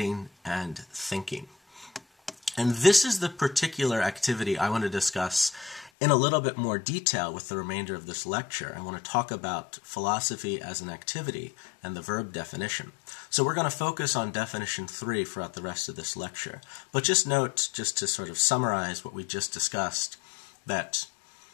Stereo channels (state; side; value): drops out; right; at 5.9 s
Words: and thinking. And this is the particular activity I want to discuss in a little bit more detail with the remainder of this lecture. I want to talk about philosophy as an activity and the verb definition. So we're going to focus on definition 3 throughout the rest of this lecture. But just note, just to sort of summarize what we just discussed, that